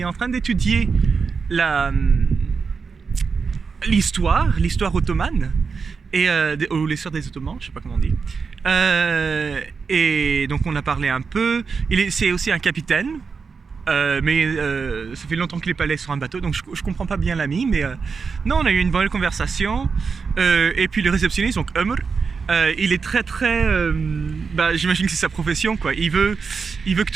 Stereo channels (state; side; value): quieter; left; 5.3 dB